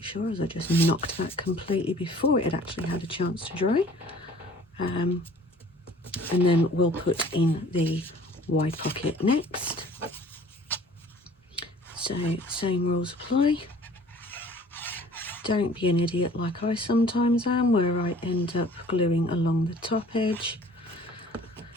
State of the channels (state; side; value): normal; both; correlation 0.51